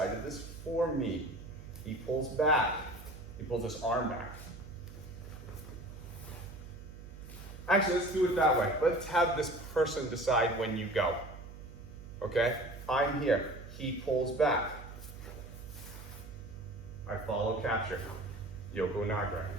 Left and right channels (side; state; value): right; noise; hum, 13 dB below the sound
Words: this for me. He pulls back. He pulls his arm back. Actually, let's do it that way. Let's have this person decide when you go. Okay? I'm here. He pulls back. I follow capture. Yoko Naga.